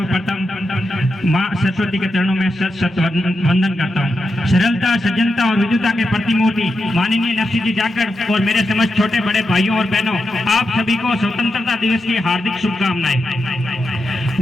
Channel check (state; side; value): normal; both; correlation 0.87